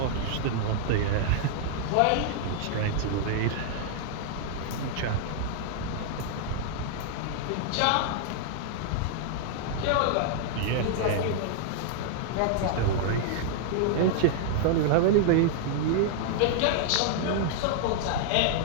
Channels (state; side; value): different; both; correlation -0.01